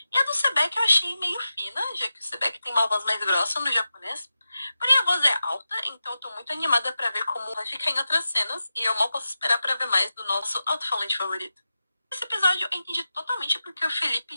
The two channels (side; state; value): both; inverted; correlation -0.91